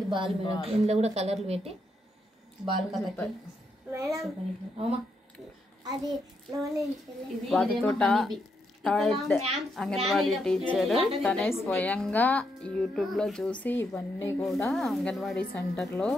బాల్ మేడం. ఇందులో కూడా కలర్లు పెట్టి బాల్ కలర్. వాటితోట అంగన్వాడీ టీచర్ తనే స్వయంగా యూట్యూబ్లో చూసి ఇవన్నీ కూడా అంగన్వాడీ సెంటర్లో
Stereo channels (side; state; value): both; normal; correlation 0.79